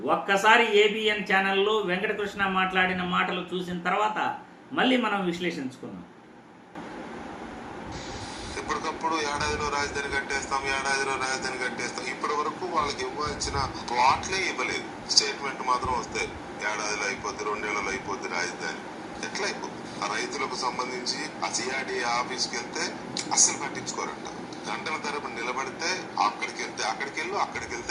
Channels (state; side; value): identical; both; correlation 1.00